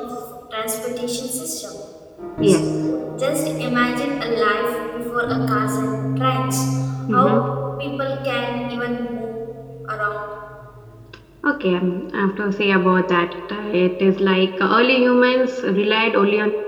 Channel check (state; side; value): identical; both; correlation 1.00